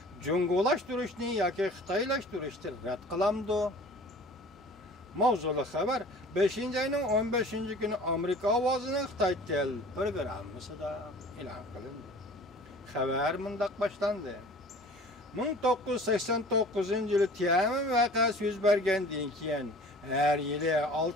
jungulashtirishni yoki xitoylashtirishni rad qilamdi. Mavzuli xabar 5-ayning 15-kuni Amerika ovozining Xitoy tel programmasida e'lon qilindi. Xabar mundaq boshlandi. 1989-yili Tiananmen voqeasi yuz bergandan keyin har yili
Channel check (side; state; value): both; normal; correlation 0.45